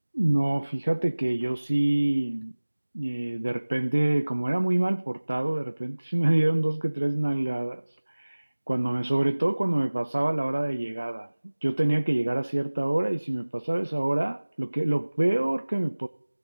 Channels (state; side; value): inverted; both; correlation -1.00